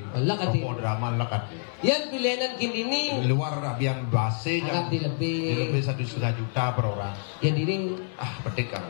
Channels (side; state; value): right; silent; 60 dB below the other